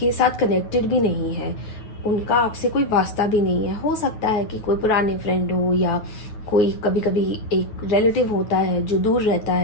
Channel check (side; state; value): right; late; 9.4 ms